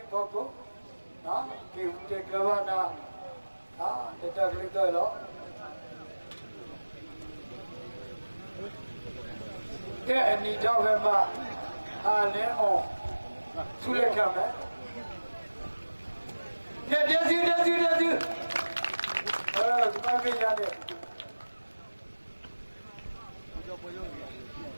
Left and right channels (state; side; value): inverted; both; correlation -1.00